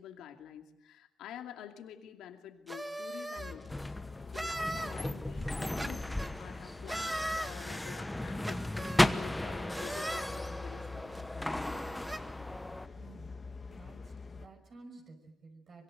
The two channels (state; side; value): normal; both; correlation 0.96